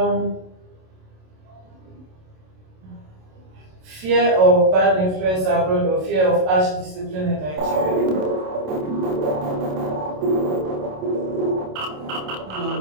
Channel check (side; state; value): left; late; 27 ms